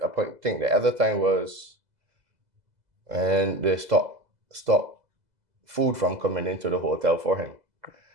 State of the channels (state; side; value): late; left; 2.0 ms